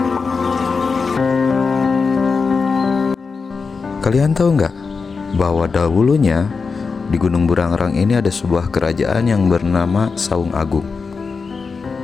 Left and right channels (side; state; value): right; quieter; 4.9 dB